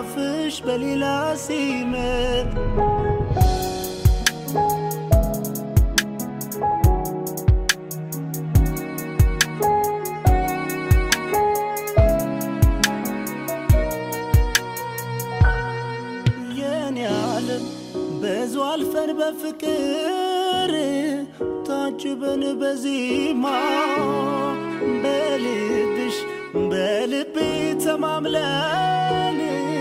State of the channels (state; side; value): identical; both; correlation 1.00